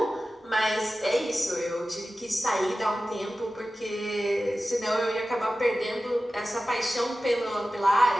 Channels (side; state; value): both; normal; correlation 0.95